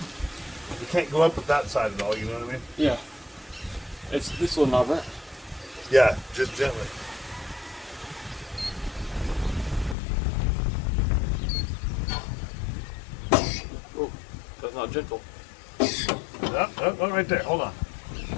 We can't go up with that side at all, you know what I mean? Yeah. It's this little knob, right? Yeah, just gently. Oh, that's not gentle. Oh, right there. Hold on.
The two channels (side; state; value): right; drops out; at 10.0 s